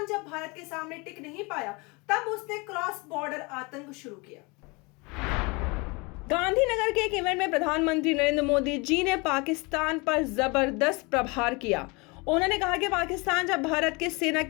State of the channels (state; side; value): quieter; right; 27.6 dB